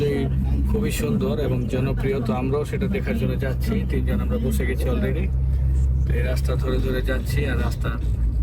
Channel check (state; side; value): identical; both; correlation 1.00